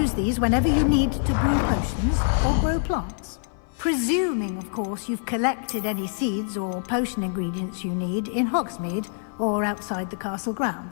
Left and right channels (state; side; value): silent; right; 57 dB below the other